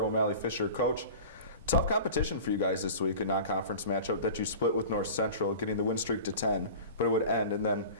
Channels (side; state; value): both; inverted; correlation -0.38